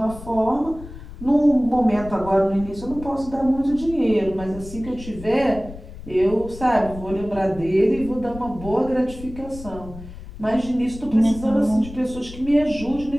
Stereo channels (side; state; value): left; noise; rumble, 14 dB below the sound